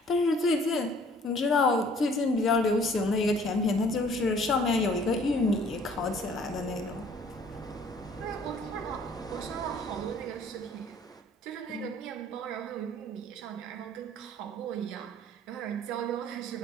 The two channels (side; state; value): both; normal; correlation 0.56